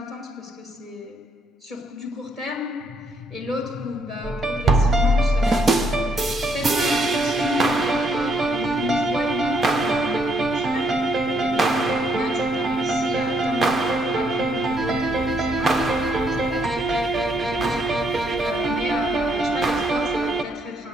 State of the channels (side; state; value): both; normal; correlation 0.72